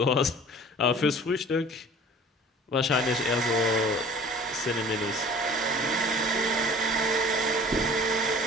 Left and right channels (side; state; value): both; normal; correlation 0.46